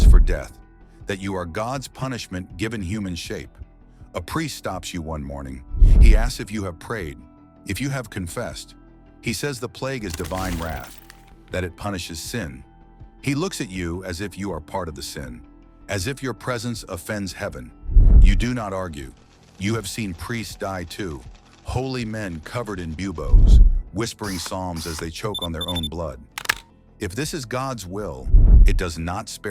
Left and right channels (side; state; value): both; identical; correlation 1.00